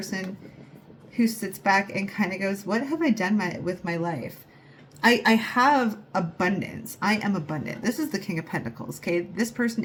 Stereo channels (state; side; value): identical; both; correlation 1.00